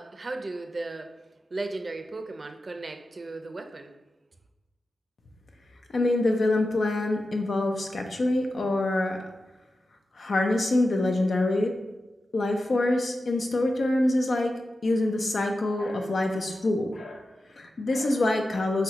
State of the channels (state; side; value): normal; both; correlation 0.92